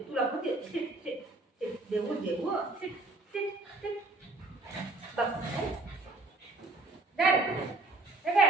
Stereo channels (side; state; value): left; quieter; 3.1 dB